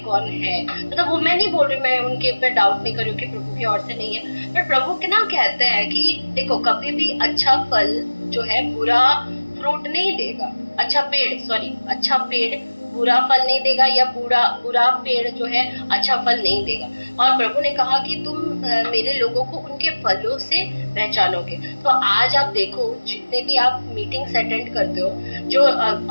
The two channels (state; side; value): inverted; both; correlation -1.00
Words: है। मतलब वो मैं नहीं बोल रही, मैं उनके ऊपर डाउट नहीं कर रही हूँ कि प्रभु की ओर से नहीं है, पर प्रभु के ना कहते हैं कि देखो कभी भी अच्छा फल जो है बुरा फ्रूट नहीं देगा। अच्छा पेड़ बुरा फल नहीं देगा या बुरा बुरा पेड़ जो है अच्छा फल नहीं देगा। और प्रभु ने कहा कि तुम मेरे लोगों को उनके फलों से पहचानोगे। तो आज आप देखो जितने भी आप मीटिंग्स अटेंड करते हो, जो